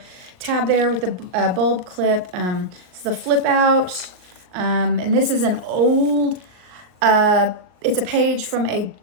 tab there with the bulb clip. It's the flip out. And this is an old, it's a page from a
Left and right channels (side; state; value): left; late; 38 ms